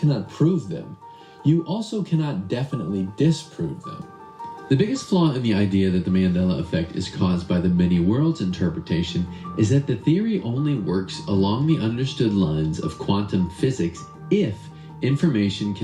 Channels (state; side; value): identical; both; correlation 1.00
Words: prove them, you also cannot definitely disprove them. The biggest flaw in the idea that the Mandela Effect is caused by the many worlds interpretation is that the theory only works along the understood lines of quantum physics if information